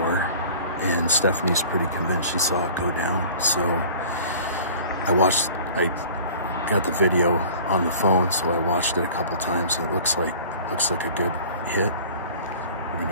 and Stephanie's pretty convinced she saw it go down. So I got the video on the phone, so I watched it a couple times. It looks like a good hit. We're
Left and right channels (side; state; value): both; inverted; correlation -0.45